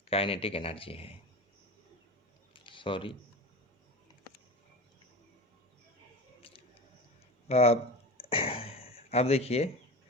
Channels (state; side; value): normal; both; correlation 0.29